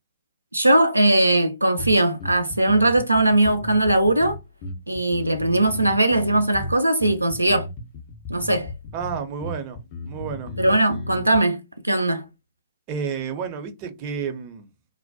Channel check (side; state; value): both; inverted; correlation -0.82